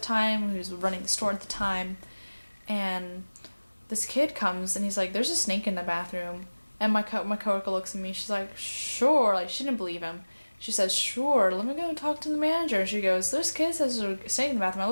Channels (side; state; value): both; inverted; correlation -1.00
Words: time, who was running the store at the time, and this kid comes and he's like, there's a snake in the bathroom. And my coworker looks at me, she's like, sure, like she didn't believe him. She says, sure, let me go and talk to the manager. And she goes, there's kids that are staying in the bathroom. I